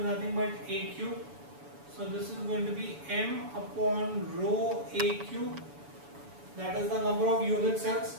nothing but A cube. So this is going to be m upon rho A cube, that is the number of unit cells.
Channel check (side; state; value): left; late; 7.0 ms